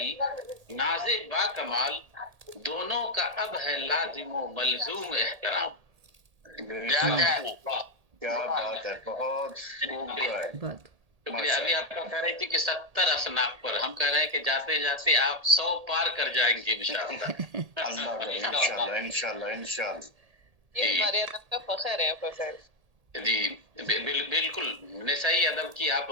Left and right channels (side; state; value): left; late; 1.8 ms